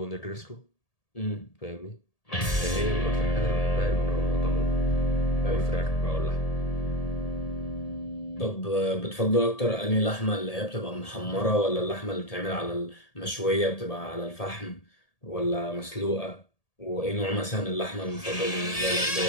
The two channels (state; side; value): late; right; 1.8 ms